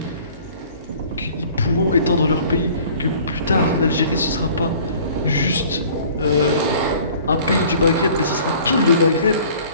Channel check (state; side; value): inverted; both; correlation -0.50